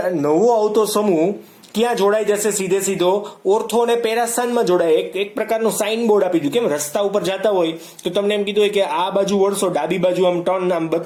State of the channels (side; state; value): both; identical; correlation 1.00